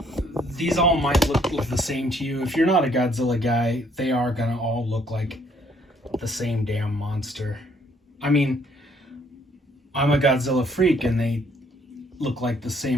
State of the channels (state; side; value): normal; both; correlation 0.65